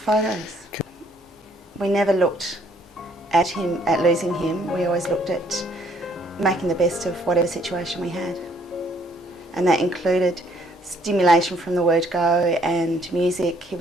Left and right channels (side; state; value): both; normal; correlation 0.64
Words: photos. We never looked at losing him. We always looked at making the best of whatever situation we had. And that included stimulation from the word go and music. He